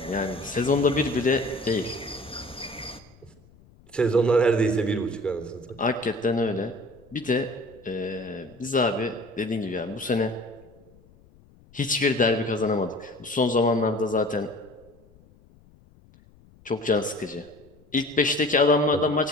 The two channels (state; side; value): noise; left; rumble, 27 dB below the sound